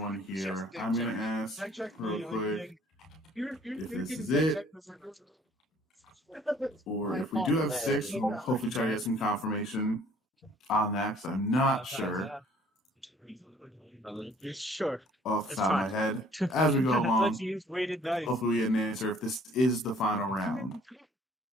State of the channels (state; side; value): normal; both; correlation 0.56